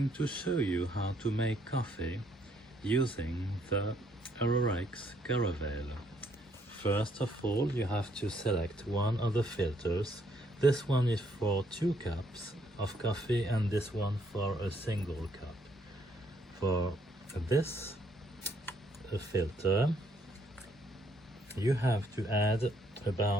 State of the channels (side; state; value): both; normal; correlation 0.69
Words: to show you how to make coffee using the Arrarex Caravel. First of all, you have to select one of the filters. This one is for 2 cups of coffee and this one for a single cup. For this filter, you have to add